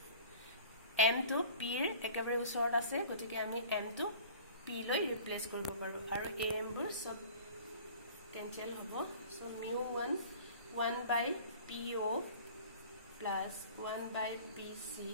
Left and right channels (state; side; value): inverted; both; correlation -0.45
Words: m to p ৰ একেবাৰে ওচৰত আছে গতিকে আমি m to p লৈ ৰিপ্লেস কৰিব পাৰো আৰু am বোৰ সব cancel হ'ব so mu1 1 by po plus 1 by pc